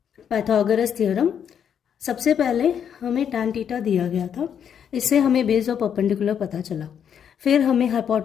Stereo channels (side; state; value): right; quieter; 8.3 dB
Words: Pythagoras theorem. सबसे पहले हमें tan थीटा दिया गया था, इससे हमें बेस और परपेंडिकुलर पता चला. फिर हमें